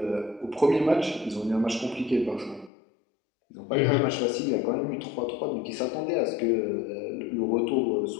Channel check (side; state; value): right; drops out; at 2.7 s